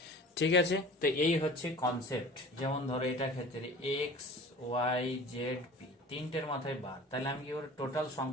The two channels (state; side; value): normal; both; correlation 0.41